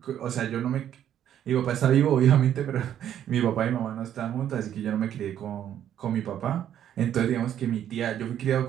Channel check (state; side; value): quieter; left; 10.4 dB